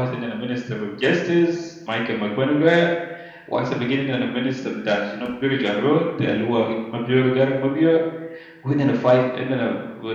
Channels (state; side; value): identical; both; correlation 1.00